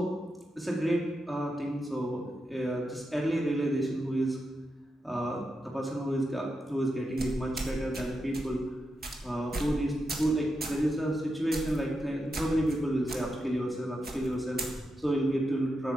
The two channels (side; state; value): both; normal; correlation 0.87